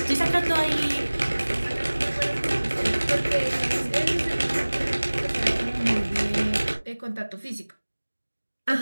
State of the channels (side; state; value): both; inverted; correlation -1.00